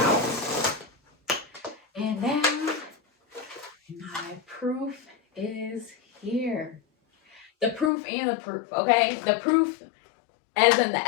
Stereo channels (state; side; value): drops out; right; at 7.9 s